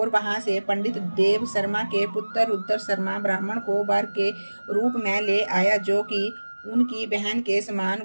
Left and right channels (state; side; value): inverted; both; correlation -1.00